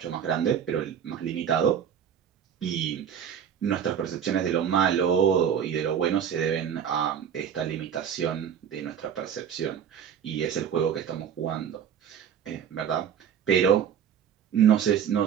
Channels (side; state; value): left; quieter; 8.5 dB